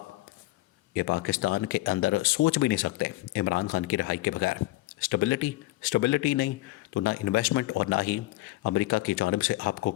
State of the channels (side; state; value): right; quieter; 18.3 dB